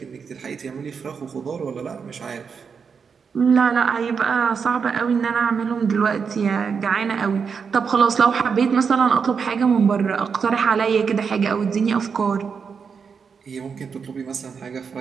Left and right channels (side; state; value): left; quieter; 6.0 dB